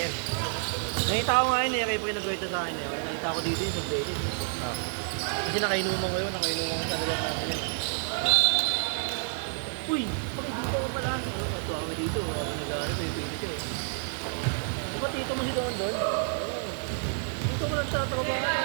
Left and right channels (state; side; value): silent; left; 58 dB below the other